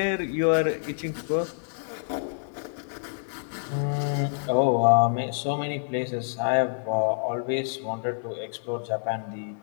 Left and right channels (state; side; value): silent; right; 60 dB below the other